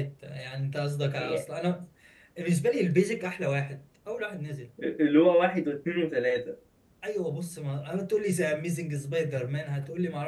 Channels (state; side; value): identical; both; correlation 1.00